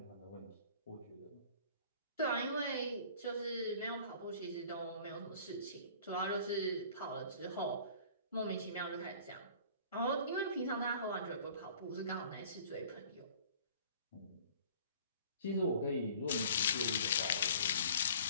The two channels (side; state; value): both; inverted; correlation -0.48